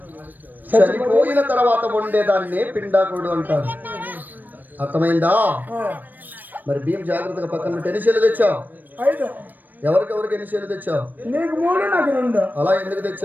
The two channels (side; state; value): left; late; 0.089 ms